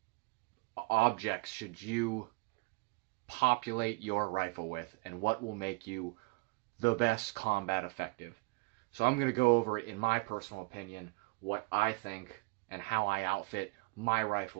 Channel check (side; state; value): left; quieter; 28.3 dB